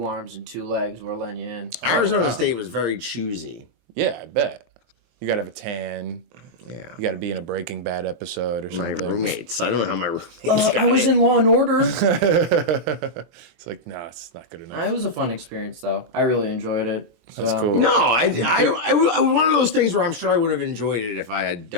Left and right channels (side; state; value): left; late; 23 ms